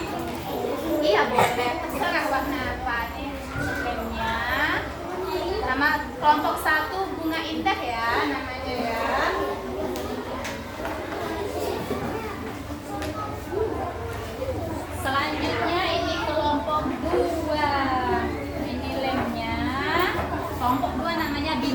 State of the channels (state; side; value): identical; both; correlation 1.00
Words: Iya boleh. Terserah warna apa nih lemnya. Nama kelompok 1 bunga indah ya namanya ya. Selanjutnya ini kelompok 2. Ini lemnya. Kelompok 2 namanya